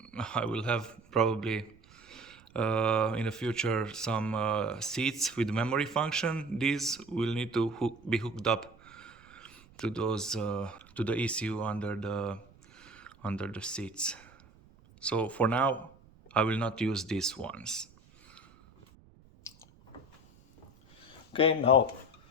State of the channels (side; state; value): right; noise; rumble, 26 dB below the sound